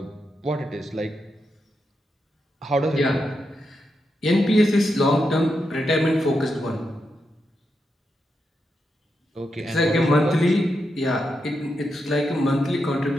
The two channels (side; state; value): both; normal; correlation 0.85